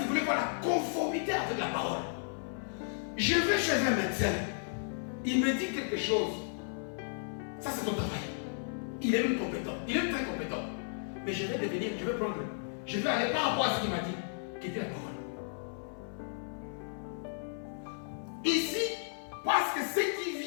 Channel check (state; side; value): silent; right; 55 dB below the other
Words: voulaient voir la conformité avec la parole. Je vais chez un médecin, il me dit quelque chose, ça c'est ton travail. Il est même compétent, il est très compétent. Mais je vais aller par rapport à ce qu'il m'a dit, qui était la parole. Ici, parce que ce qui